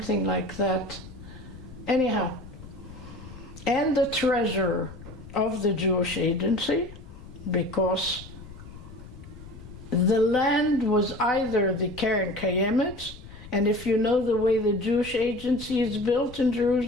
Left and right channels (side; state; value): left; noise; rumble, 16 dB below the sound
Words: like that. Anyhow, and the treasurer of the Jewish agency, because the land was either the Keren Kayemet, and if you know the way the Jewish agency is built in